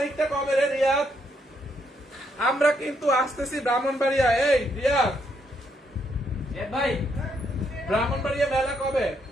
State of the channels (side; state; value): both; normal; correlation 0.75